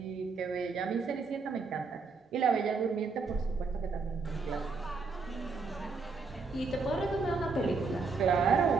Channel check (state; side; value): quieter; left; 4.5 dB